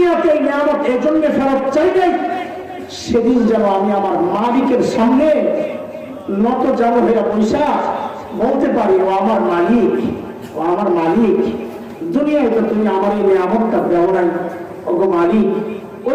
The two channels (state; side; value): identical; both; correlation 1.00